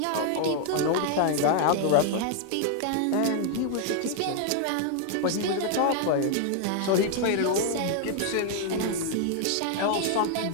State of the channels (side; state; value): both; different; correlation 0.00